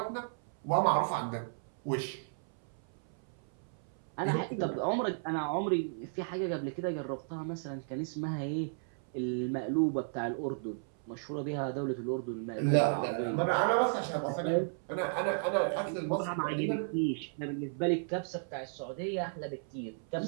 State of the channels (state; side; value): silent; left; 55 dB below the other